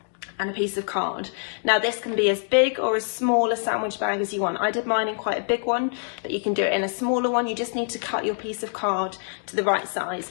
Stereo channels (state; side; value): silent; right; 62 dB below the other